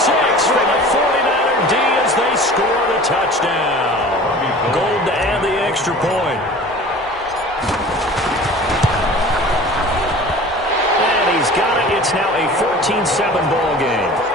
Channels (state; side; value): normal; both; correlation 0.41